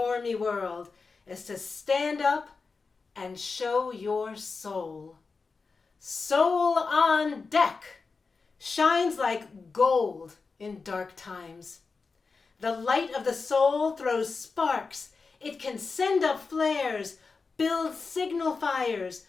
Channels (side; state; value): right; quieter; 4.5 dB